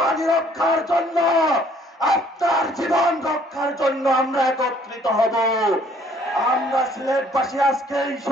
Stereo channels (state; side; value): normal; both; correlation 0.60